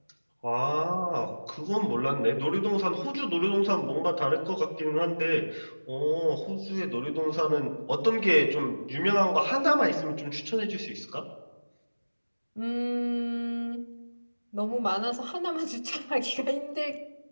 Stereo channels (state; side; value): inverted; both; correlation -1.00